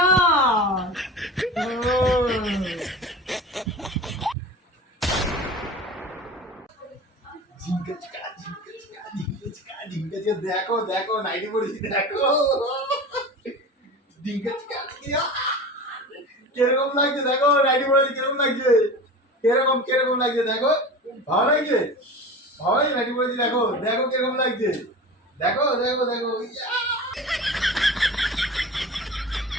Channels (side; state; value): both; normal; correlation 0.33